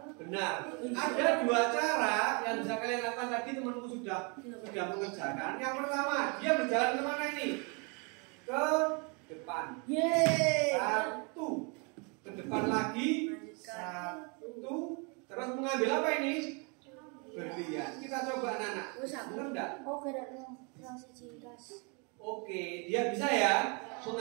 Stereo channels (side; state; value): left; quieter; 33.4 dB